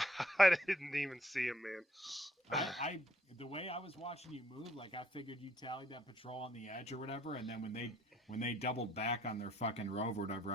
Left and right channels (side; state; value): both; normal; correlation 0.67